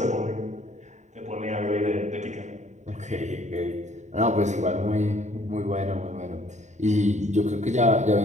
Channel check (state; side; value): late; left; 0.34 ms